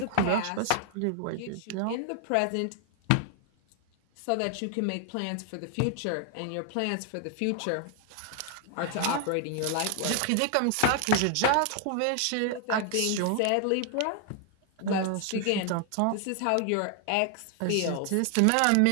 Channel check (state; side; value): different; both; correlation 0.00